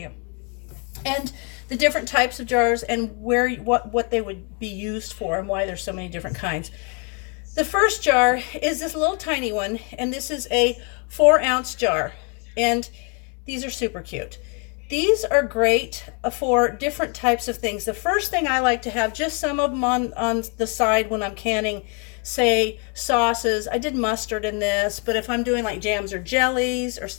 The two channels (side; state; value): right; quieter; 36.1 dB